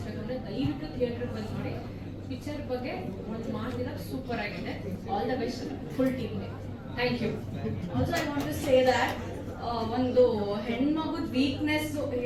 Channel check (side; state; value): both; identical; correlation 1.00